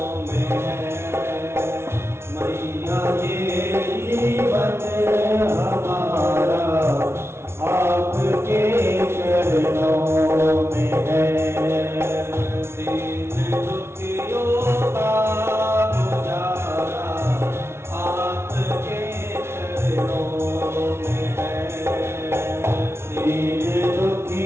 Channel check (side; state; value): left; late; 0.12 ms